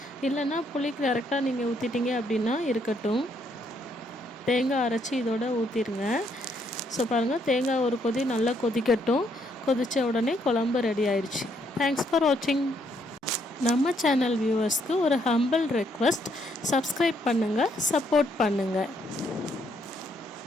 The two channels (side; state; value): both; normal; correlation 0.72